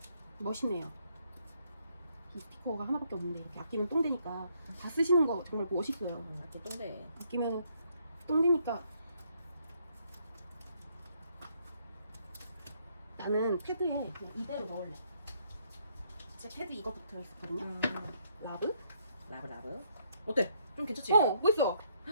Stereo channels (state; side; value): inverted; both; correlation -0.71